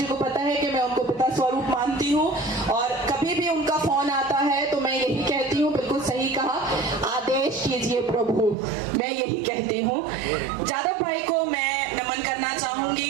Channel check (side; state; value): left; drops out; at 8.6 s